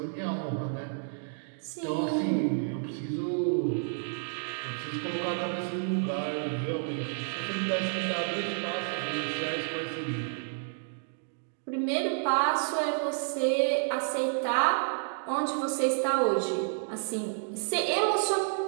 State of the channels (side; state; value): left; silent; digital silence